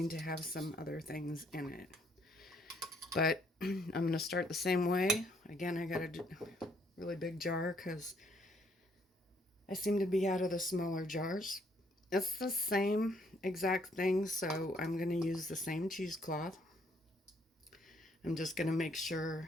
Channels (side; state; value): both; normal; correlation 0.68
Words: to have some other things in it. But I'm going to start the same way. Again, I got a really big jar because I seem to be out of the smaller jars. It's the same exact thing, so I'm going to use the same cheesecloth. I'm just going to make